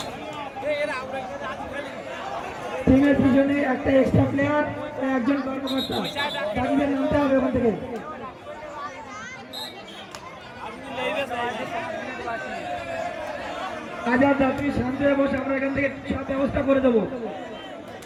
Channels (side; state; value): both; identical; correlation 1.00